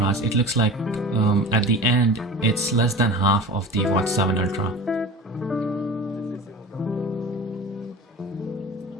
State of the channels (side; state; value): both; normal; correlation 0.34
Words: it looks like at the end it's less than half of the Watch 7 Ultra.